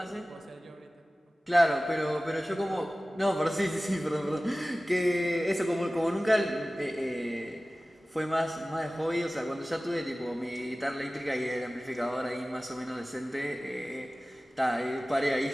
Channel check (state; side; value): normal; both; correlation 0.97